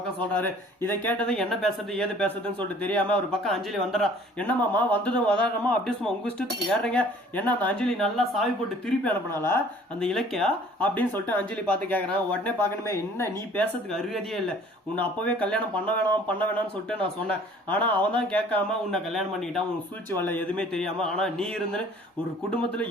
சொல்றாரு. இதை கேட்டது என்ன பேசுறது ஏது பேசுறதுன்னு சொல்லிட்டு தெரியாம ஒரு பக்கம் அஞ்சலி வந்துடுறா. என்னமாமா வந்ததும் வதாரமா அப்படி சும்மா உங்க இஷ்டத்துக்கு ஏறுறீங்க? என்ன அந்த அஞ்சலி நல்லா சாவி போட்டு திருப்பி அனுப்பினால அந்த இலக்கியா அப்படின்னு சொல்லிட்டு அஞ்சலி பார்த்து கேட்கறான். உடனே பார்க்கணுமே, என்ன நீ பேசுறதுக்கு அருகதியே இல்லை. உன்னை அப்பவே கல்யாணம் பண்ண வேணாம்னு சொல்லிட்டு நான் சொன்னேன். ஆனா அவன் தான் கேட்காம உன்னை கல்யாணம் பண்ணிக்கிட்டான். உன் சூழ்ச்சி வரல எதுவுமே தெரியாம. ஆனா நீ இருந்து ஒரு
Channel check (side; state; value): both; normal; correlation 0.53